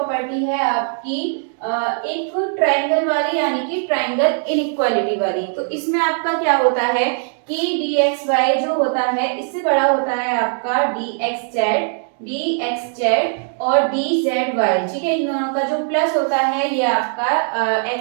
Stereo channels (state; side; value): silent; left; digital silence